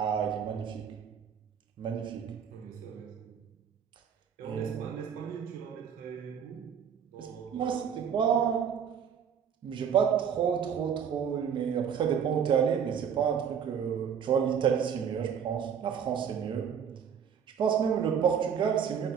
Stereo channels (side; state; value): left; quieter; 7.7 dB